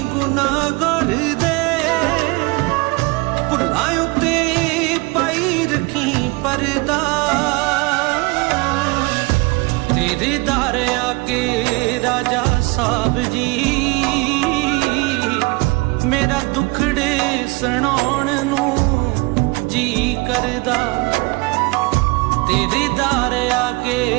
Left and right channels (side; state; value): left; quieter; 26.1 dB